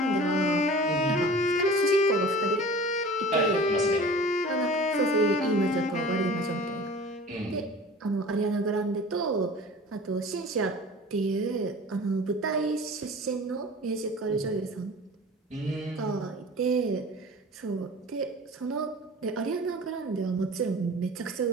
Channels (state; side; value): normal; both; correlation 0.41